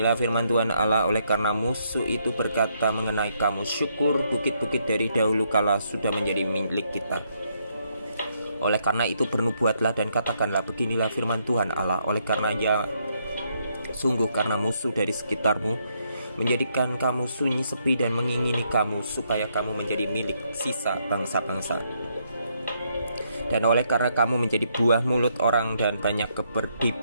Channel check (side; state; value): both; inverted; correlation -0.74